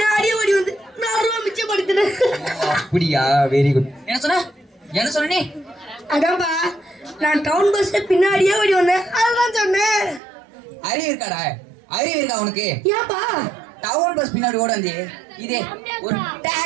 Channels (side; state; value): left; drops out; at 10.2 s